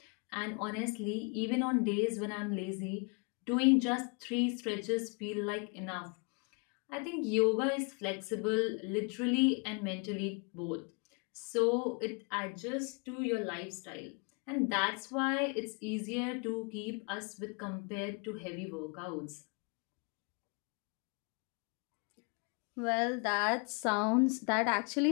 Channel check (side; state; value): right; quieter; 34.8 dB